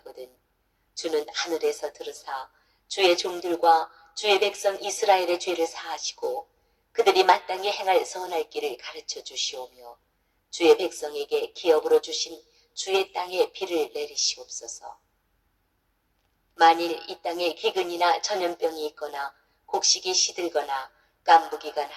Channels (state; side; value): identical; both; correlation 1.00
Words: 주는 하늘에서 들으사 주의 종들과 주의 백성 이스라엘의 죄를 사하시고 그들이 마땅히 행할 선할 길을 가르쳐 주시오며 주의 백성에게 기업으로 주신 주의 땅에 비를 내리시옵소서. 만일 이 땅에 기근이나 전염병이 있거나 곡식이 시들거나 깐부기가